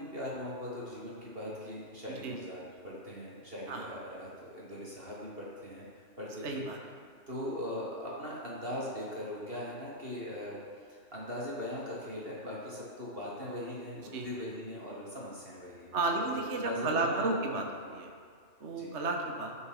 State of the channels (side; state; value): left; late; 2.7 ms